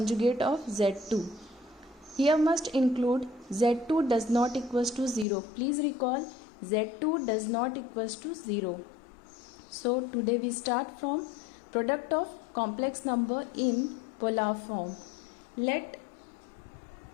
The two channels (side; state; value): right; drops out; at 5.2 s